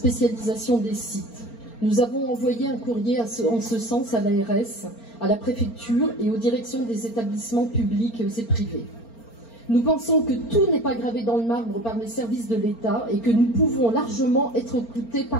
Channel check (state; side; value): late; right; 4.4 ms